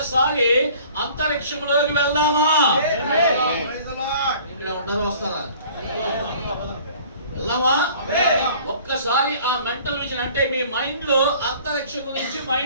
అంతరిక్షంలోకి వెళ్దామా? ఇక్కడ ఉంటారా? వస్తారా? వెళ్దామా? ఒక్కసారి ఆ మెంటల్ విజన్ అంటే మీ మైండ్ లో అంతరిక్షం గురించి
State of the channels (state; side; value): inverted; both; correlation -0.50